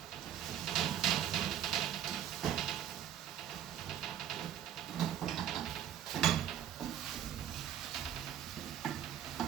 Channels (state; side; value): quieter; left; 10.3 dB